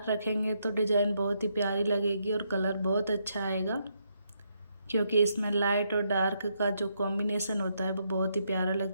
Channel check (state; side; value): inverted; both; correlation -0.77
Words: रखेंगे तो डिज़ाइन बहुत ही प्यारी लगेगी और कलर बहुत अच्छा आएगा, क्योंकि इसमें लाइट और डार्क का जो कॉम्बिनेशन होता है वो बहुत ही प्यारा